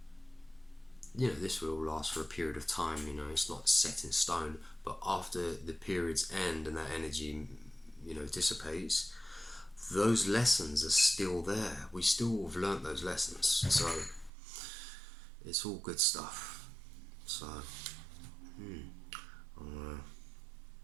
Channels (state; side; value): drops out; left; at 14.3 s